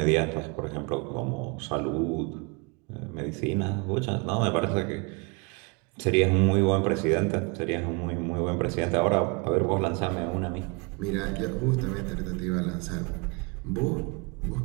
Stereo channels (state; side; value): quieter; left; 30.4 dB